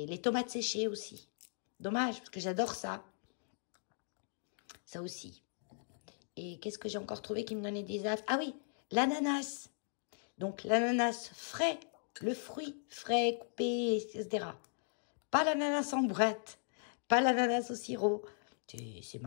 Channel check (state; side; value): silent; right; digital silence